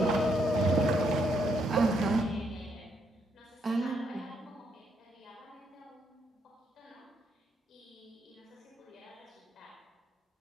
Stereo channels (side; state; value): both; normal; correlation 0.75